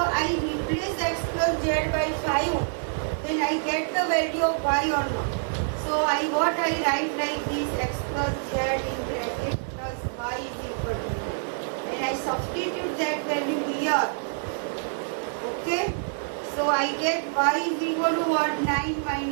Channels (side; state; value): left; silent; digital silence